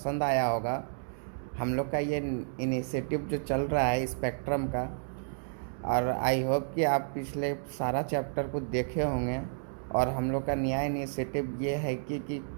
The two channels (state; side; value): silent; left; digital silence